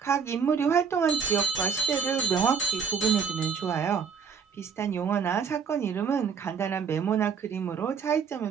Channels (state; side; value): quieter; left; 6.5 dB